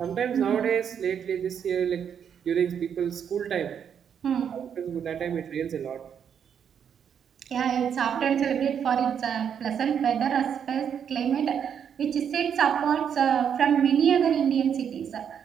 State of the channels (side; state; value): left; quieter; 8.0 dB